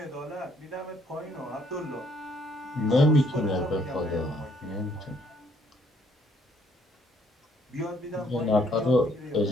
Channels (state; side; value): normal; both; correlation 0.66